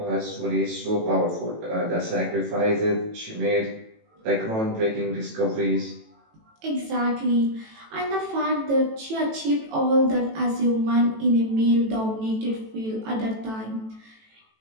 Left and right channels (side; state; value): left; late; 18 ms